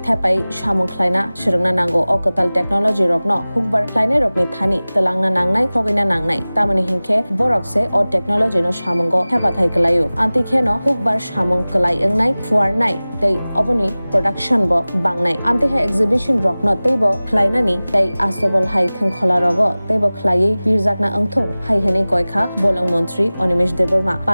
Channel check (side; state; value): both; inverted; correlation -0.98